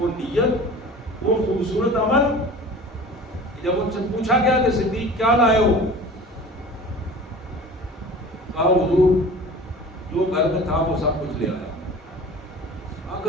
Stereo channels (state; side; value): normal; both; correlation 0.40